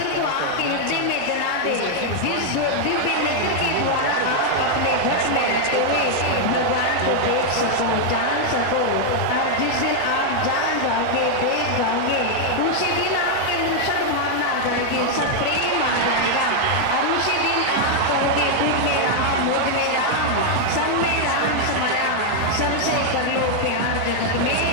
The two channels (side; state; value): both; different; correlation 0.00